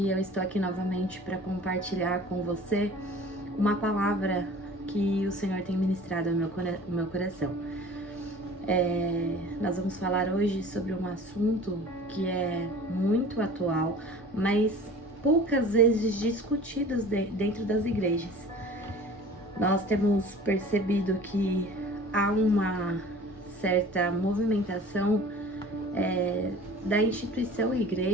eu estou aqui novamente para compartilhar com você uma palavra que o Senhor tem ministrado no meu coração. Nós vamos falar hoje sobre um assunto que é muito atual, mas poucas vezes discutido dentro das igrejas. Nós temos percebido que há uma certa movimentação da instituição e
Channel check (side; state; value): both; normal; correlation 0.43